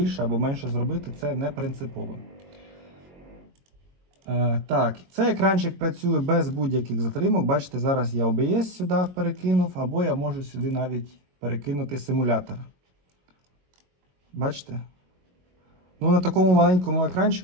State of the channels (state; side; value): late; left; 22 ms